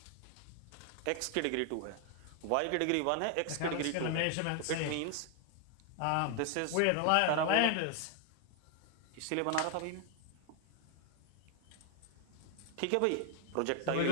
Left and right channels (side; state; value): both; different; correlation 0.01